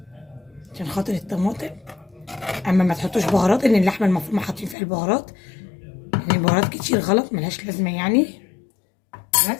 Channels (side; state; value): right; drops out; at 4.8 s